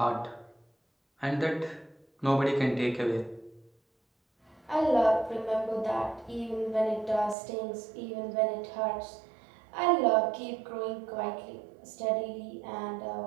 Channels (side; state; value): left; drops out; at 7.4 s